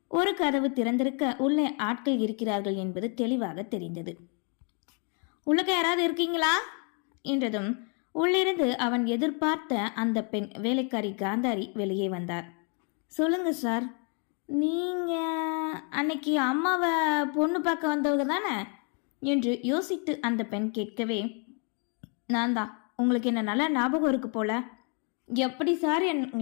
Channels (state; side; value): quieter; right; 38.7 dB